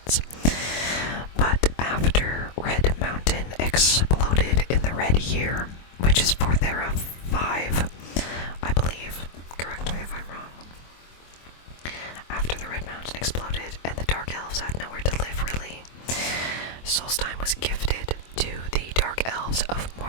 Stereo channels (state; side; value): late; right; 24 ms